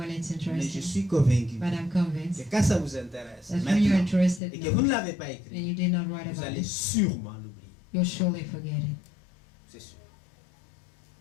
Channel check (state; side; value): drops out; right; at 4.4 s